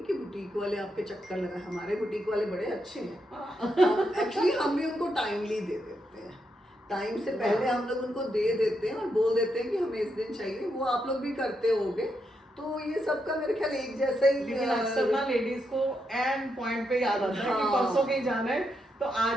कि बुटीक वाले आपके चक्कर लगाए, हमारे बुटीक वाले बड़े अच्छे हैं, एक्चुअली हम भी उनको टाइमली दे देते हैं, टाइम से पहले हम लोग उनको दे देते हैं और बोल देते हैं कि हमें इस दिन चाहिए, वो आप लोग भी करते होगे, तो ये सबका मेरे ख्याल एक जैसा ही। लेकिन अक्सर ना लेडीज को एंड पॉइंट पे याद आता है कि हाँ। परसों कहीं जाना है तो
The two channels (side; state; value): both; normal; correlation 0.82